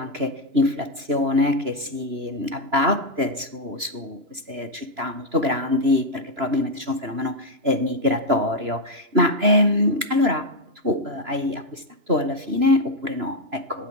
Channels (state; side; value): late; left; 3.0 ms